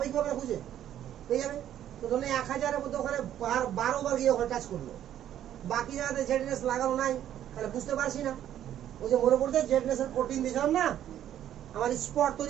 কি হবে না, খুঁজে পেয়ে যাবে। তো ধরুন 1000-এর মধ্যে ওখানে 12 বার গিয়ে ওখানে টাচ করলো, বাকি জায়গাতে জেডিএস লাগানো নাই, তাহলে বুঝতে পারছি না। ওই যে মনে পড়ছে জেডিএস এর প্রোটিন দিয়েছিলাম না আমার স্পট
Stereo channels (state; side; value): quieter; left; 11.1 dB